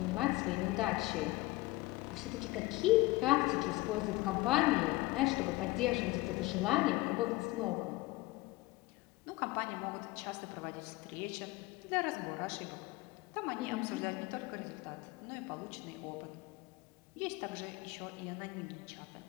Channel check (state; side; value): quieter; right; 20.3 dB